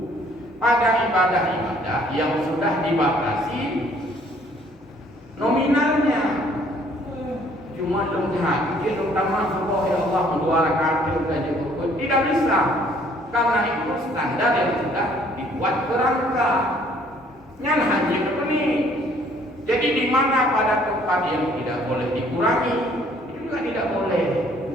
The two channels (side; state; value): both; normal; correlation 0.60